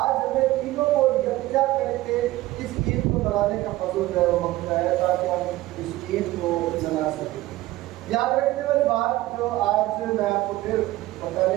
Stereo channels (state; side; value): quieter; left; 17.1 dB